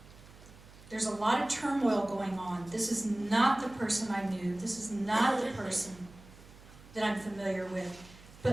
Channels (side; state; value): right; noise; hum, 21 dB below the sound